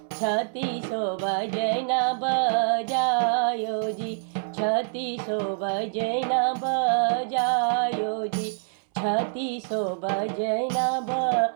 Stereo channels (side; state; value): left; silent; 61 dB below the other